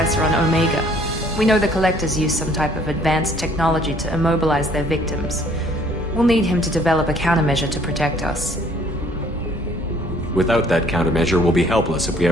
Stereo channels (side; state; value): both; normal; correlation 0.59